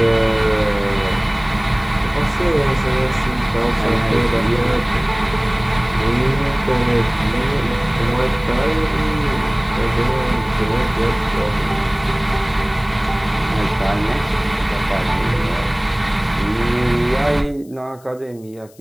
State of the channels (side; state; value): left; noise; hiss, 28 dB below the sound